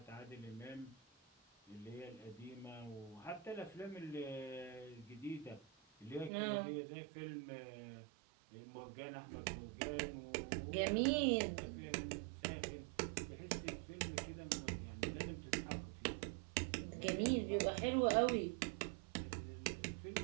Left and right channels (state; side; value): drops out; left; at 6.3 s